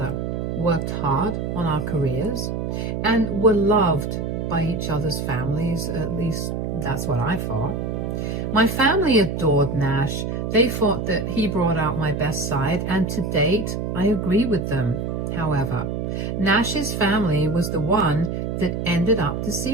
worked hard on our careers, and were loved by each other's families. At least that's what I thought. My family adored Nash. They thought that he brought out my best side, and to date, I agree with them. However, Nash's family was the one that ended up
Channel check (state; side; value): noise; right; hum, 2 dB below the sound